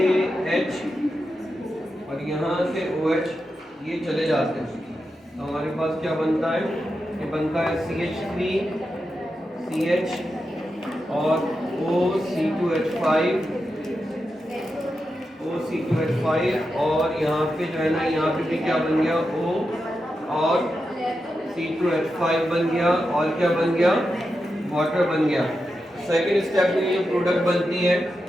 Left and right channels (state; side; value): normal; both; correlation 0.88